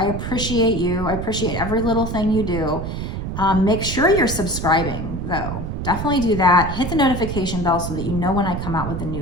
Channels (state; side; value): noise; right; rumble, 5 dB below the sound